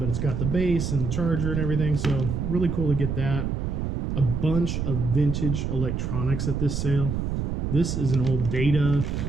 it's got the base and the charger and everything. So really cool to get that. A bunch of vintage electronics at this sale. This is an old Data,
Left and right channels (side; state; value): right; noise; rumble, 1 dB below the sound